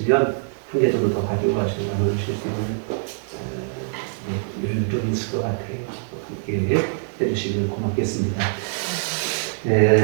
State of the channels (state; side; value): silent; left; digital silence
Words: 한 개 정도 더 가지고 가시고 나눠주실 수 있는 여유 좀 있을 것 같아요. 함께 해주시면 고맙겠습니다.